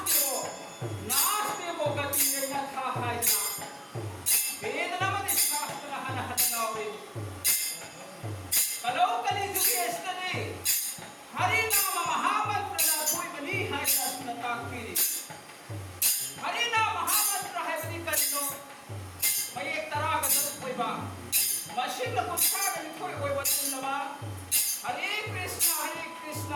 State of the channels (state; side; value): identical; both; correlation 1.00